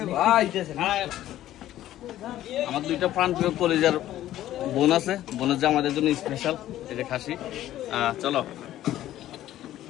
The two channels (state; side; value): quieter; right; 13.4 dB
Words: ভাই আমার দুইটা প্রাণপ্রিয় কলেজের বোন আছে, বোনের যে আমাদের জন্য স্পেশাল এই যে খাসি। চলো